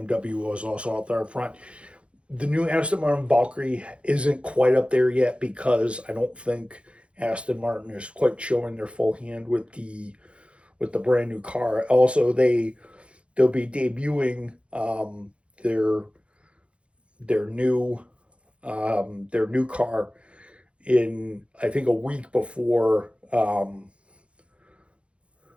was also out there in front. The new Aston Martin Valkyrie isn't quite up there yet because I don't think Aston Martin is quite showing their full hand with the brand new car. Also, they'll be debuting their new car in, I think, a week before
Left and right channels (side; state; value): left; late; 0.060 ms